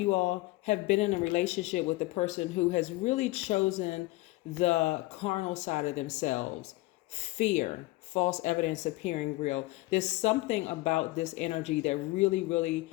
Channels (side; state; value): right; quieter; 20.0 dB